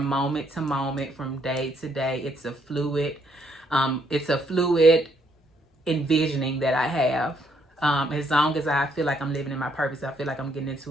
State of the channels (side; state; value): both; normal; correlation 0.71